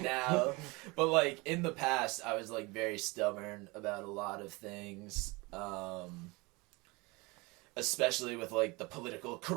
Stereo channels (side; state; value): left; quieter; 25.3 dB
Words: now. But like in the past, I was like very stubborn about a lot of things. Especially with like the political